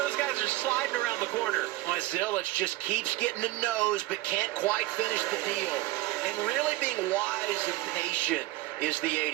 guys are sliding around the corner. Zilich just keeps getting a nose but can't quite finish the deal. And really being wise and patient is the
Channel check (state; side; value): quieter; left; 17.9 dB